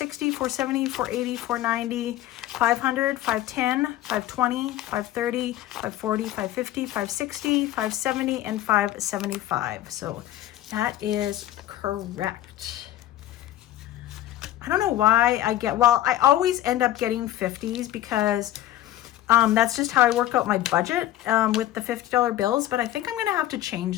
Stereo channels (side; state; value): right; quieter; 13.8 dB